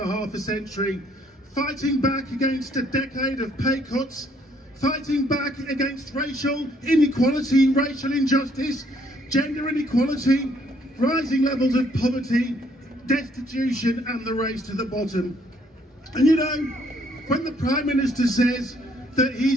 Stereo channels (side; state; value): both; normal; correlation 0.66